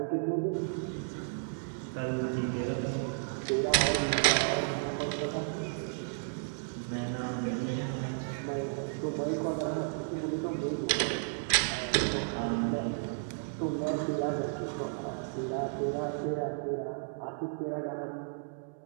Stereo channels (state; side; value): silent; left; digital silence